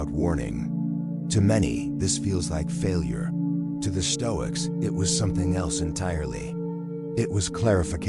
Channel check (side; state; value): both; identical; correlation 1.00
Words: warning. To many, this feels like failure. To the Stoics, it was something else entirely. It was